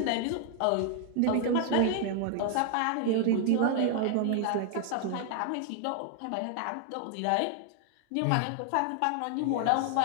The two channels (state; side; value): different; both; correlation 0.00